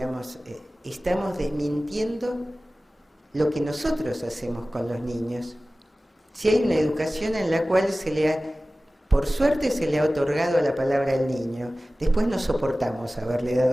estamos desmintiendo lo que nosotros hacemos con los niños. Si hay una educación en la cual por suerte se le ha otorgado la palabra al niño, después no soportamos haberle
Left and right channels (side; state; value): both; normal; correlation 0.97